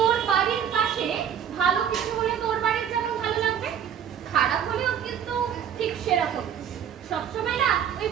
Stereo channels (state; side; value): quieter; left; 8.7 dB